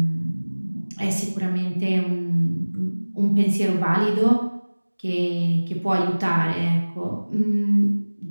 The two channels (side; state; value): both; inverted; correlation -1.00